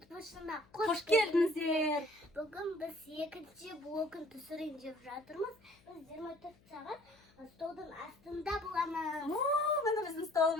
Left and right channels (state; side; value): noise; left; hum, 29 dB below the sound